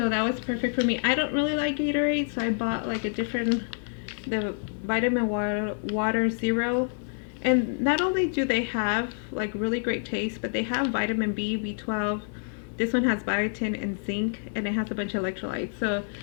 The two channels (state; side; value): silent; right; digital silence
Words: that was perfect for me. I don't really like Gatorade, so I bought like the vitamin water zero. And not only do they have like really great taste, but they have vitamin B, B12. This one has biotin and zinc, and it has a bunch of electrolytes. So